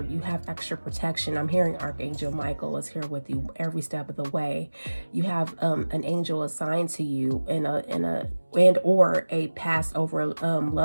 have extra protection. I'm hearing Archangel Michael is here with you every step of the way. You have an angel assigned to you or a passed over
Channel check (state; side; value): inverted; both; correlation -1.00